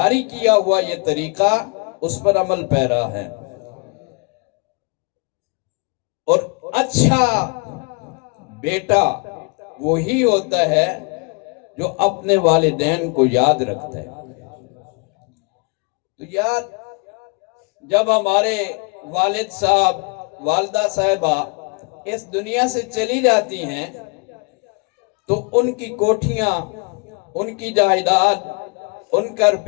کیا ہوا یہ طریقہ اس پر عمل پیرا ہے۔ اور اچھا بیٹا وہی ہوتا ہے جو اپنے والدین کو یاد رکھتا ہے۔ تو یار، جب ہمارے والد صاحب، والدہ صاحبہ اس دنیا سے چلی جاتی ہیں تو ان کی کوٹھیاں، ان کی جائیداد، ان کا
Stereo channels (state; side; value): quieter; right; 31.6 dB